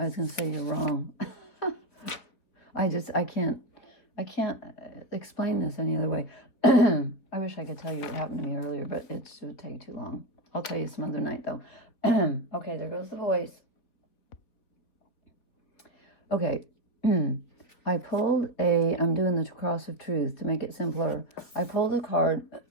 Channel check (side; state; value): right; late; 4.0 ms